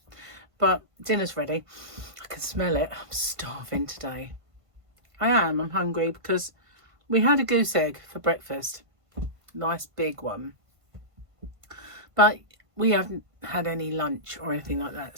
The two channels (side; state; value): left; late; 1.5 ms